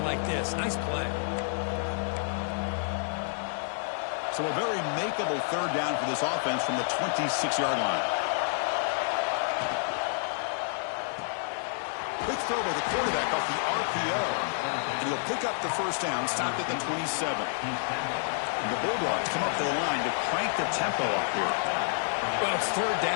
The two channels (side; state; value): right; silent; digital silence